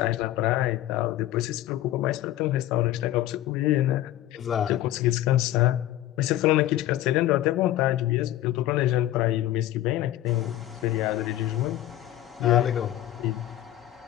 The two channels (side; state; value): right; quieter; 13.7 dB